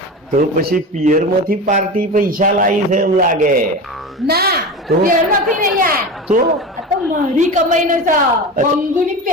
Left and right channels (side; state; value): both; normal; correlation 0.27